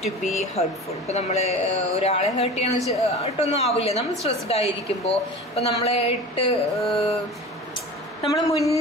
to be hurtful. ഇപ്പോൾ നമ്മൾ ഒരാളെ heart ചെയ്യാന്ന് വെച്ചിട്ടൊന്നും ആവില്ല. നമ്മൾ സ്ട്രെസ്ഡ് ആയിരിക്കുമ്പോൾ ഇപ്പോൾ നമ്മളെ ഇട്ട് നമ്മൾ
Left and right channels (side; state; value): both; normal; correlation 0.35